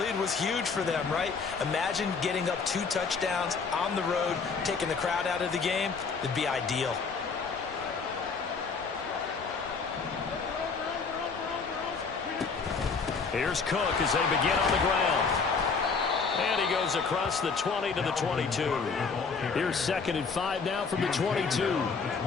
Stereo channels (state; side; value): quieter; right; 5.0 dB